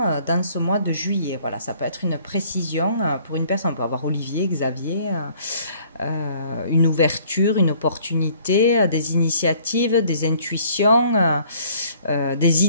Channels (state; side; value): inverted; both; correlation -0.58